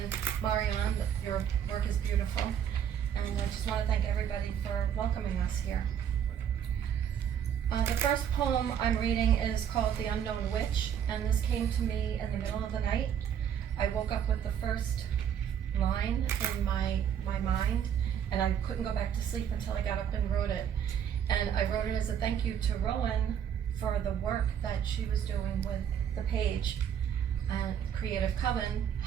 Marianne. Your work is beautiful, and I just want to thank everybody for welcoming us here. The first poem I'm reading is called The Unknown Witch, and this came to me in the middle of the night. I woke up with the first line in my mind, and I couldn't go back to sleep until I got up and wrote it. And I wrote it as a thank you to Rowan for the work that she was doing with the page and Creative Coven,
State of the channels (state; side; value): quieter; left; 8.8 dB